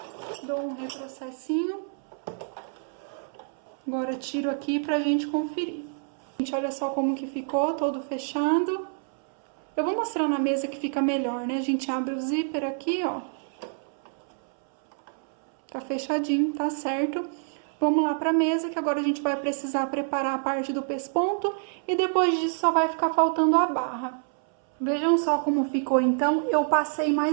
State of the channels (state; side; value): silent; left; 60 dB below the other